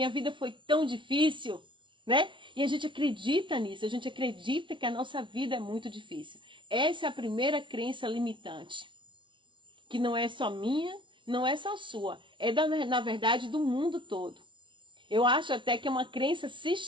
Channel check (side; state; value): left; late; 0.24 ms